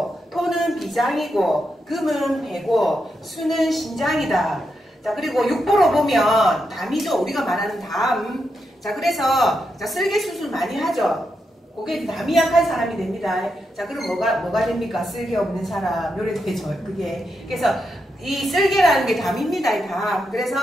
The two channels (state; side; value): normal; both; correlation 0.84